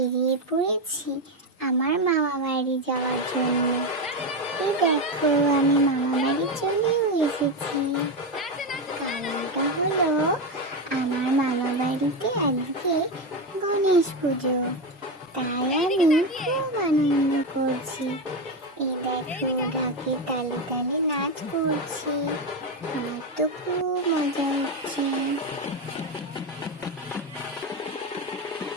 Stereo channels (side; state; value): both; normal; correlation 0.12